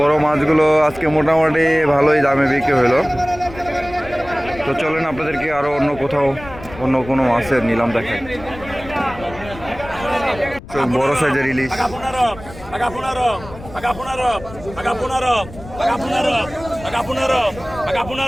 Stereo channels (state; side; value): noise; left; rumble, 16 dB below the sound